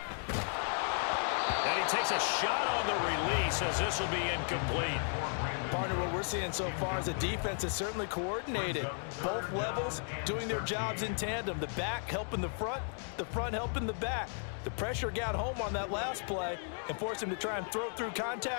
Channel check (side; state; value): right; silent; 55 dB below the other